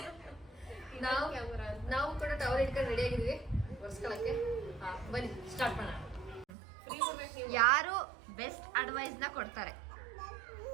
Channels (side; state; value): left; drops out; at 6.5 s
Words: ನಾವು ಕೂಡ ಟವರ್ ಇಟ್ಕೊಂಡು ರೆಡಿ ಆಗಿದೀವಿ ಒರ್ಸ್ಕೊಳಕ್ಕೆ. ಬನ್ನಿ ಸ್ಟಾರ್ಟ್ ಮಾಡೋಣ. ಯಾರು ಬೆಸ್ಟ್ ಅಡ್ವೈಸ್ ನ ಕೊಡ್ತಾರೆ?